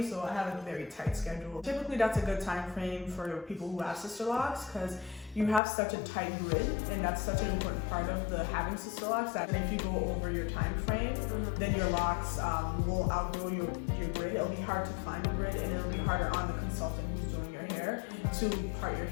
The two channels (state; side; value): drops out; right; at 5.6 s